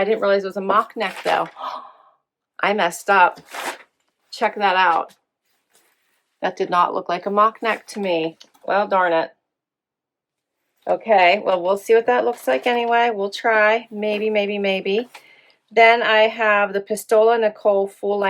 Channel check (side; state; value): both; identical; correlation 1.00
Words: didn't realize it was a mock neck though. I messed up. Check that out. That did not look like a mock neck to me. Well, darn it. Okay, well, we'll see what that looks like anyway. We'll try. Maybe, maybe, maybe. Then I have the Pistola Nicole